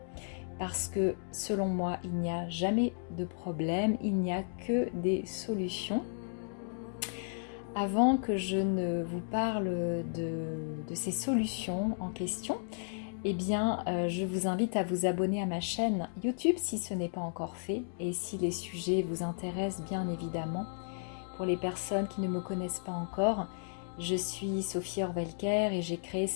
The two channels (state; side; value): silent; right; digital silence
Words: parce que selon moi, il n'y a jamais de problème, il n'y a que des solutions. Avant que je ne vous parle de ces solutions en question, je vous invite à vous abonner à ma chaîne YouTube si ce n'est pas encore fait et si les sujets vous intéressent bien évidemment. Pour les personnes qui ne me connaissent pas encore, je suis Sophie Orvelker et j'ai créé